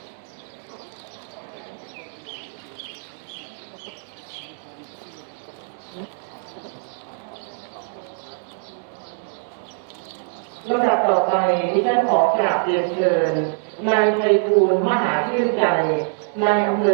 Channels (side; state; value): left; silent; digital silence